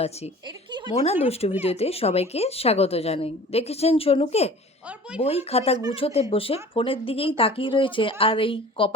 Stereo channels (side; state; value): both; normal; correlation 0.42